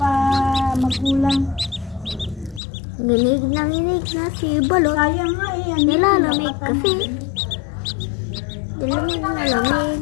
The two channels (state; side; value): drops out; right; at 2.6 s